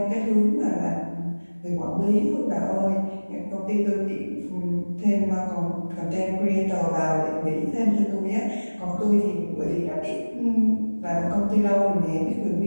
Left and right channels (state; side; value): inverted; both; correlation -1.00